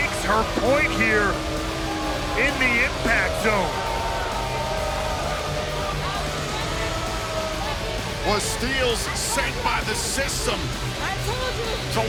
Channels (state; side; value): identical; both; correlation 1.00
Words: her point here in the Impact Zone. Was Steelz sent by the system to